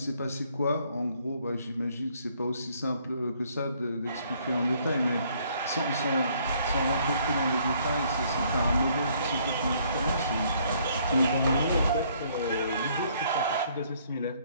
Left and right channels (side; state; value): both; inverted; correlation -0.65